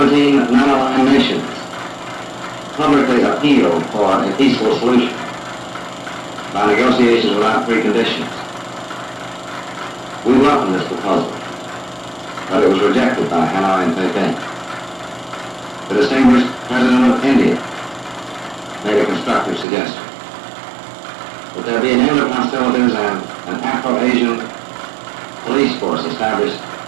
non-aligned nations publicly appealed for a peaceful solution by negotiations without preconditions. We welcomed this proposal, but it was rejected by Hanoi and Beijing. The distinguished President of India made a constructive suggestion that there be an end of hostilities and an Afro-Asian police force established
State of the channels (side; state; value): left; drops out; at 19.7 s